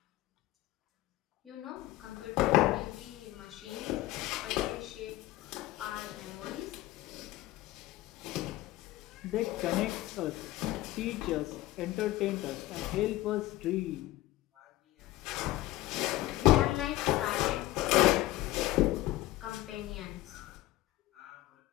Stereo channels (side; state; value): right; quieter; 16.7 dB